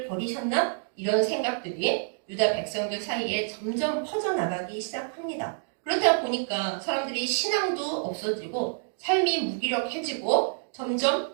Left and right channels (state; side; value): silent; left; digital silence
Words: 버리셨나? 이런 생각들이 유다 백성들 사이에 점점 퍼져나가기 시작합니다. 그러다 보니까 사람들이 신앙도 없어지고 삶이 무기력해지고